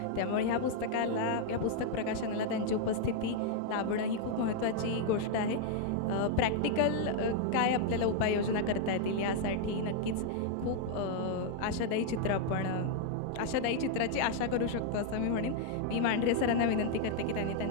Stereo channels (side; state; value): both; different; correlation 0.00